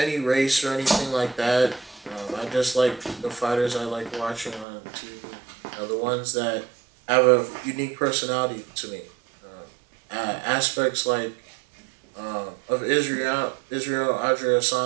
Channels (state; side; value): drops out; left; at 4.7 s